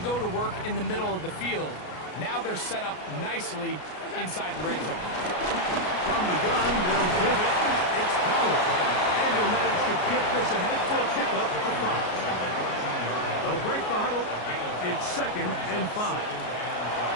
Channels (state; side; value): late; right; 33 ms